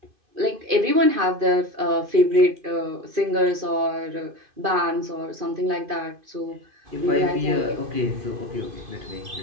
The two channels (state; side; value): late; left; 2.5 ms